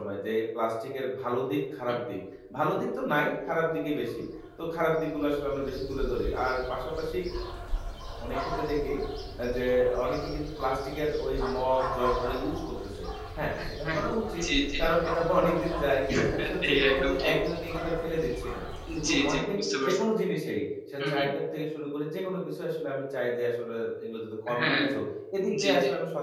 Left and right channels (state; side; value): identical; both; correlation 1.00